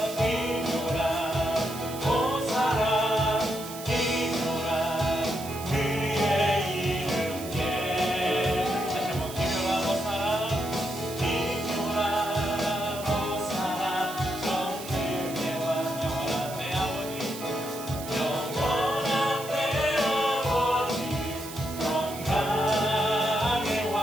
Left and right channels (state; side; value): noise; right; hiss, 12 dB below the sound